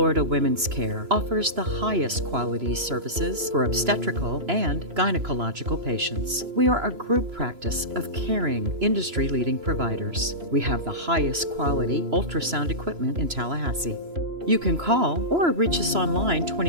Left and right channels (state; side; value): late; left; 3.0 ms